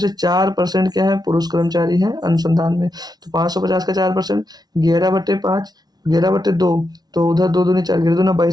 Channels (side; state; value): left; late; 0.19 ms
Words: 4% क्या है, पुरुष कर्मचारी हैं अनुसंधान में। तो 550 का 4%, 11/5, 11/2, तो उधर 2 दूनी 4, 11 दूना